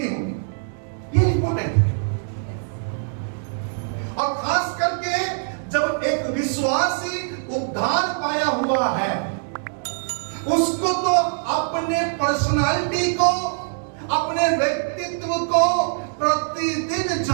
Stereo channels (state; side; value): silent; left; digital silence